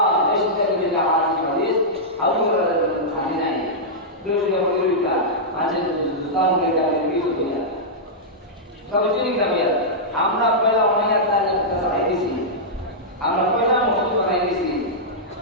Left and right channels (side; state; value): both; normal; correlation -0.10